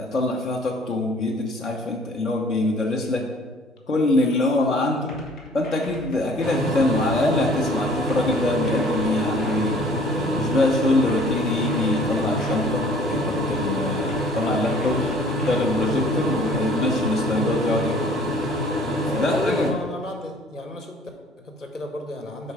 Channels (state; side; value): normal; both; correlation 0.54